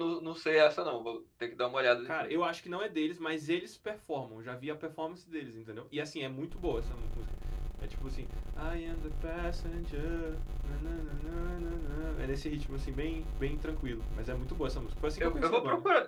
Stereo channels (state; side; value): identical; both; correlation 1.00